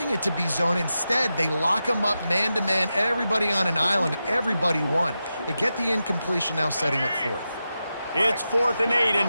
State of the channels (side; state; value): both; inverted; correlation -0.90